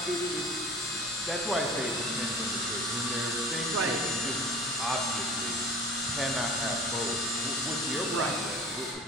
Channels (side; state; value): both; normal; correlation 0.40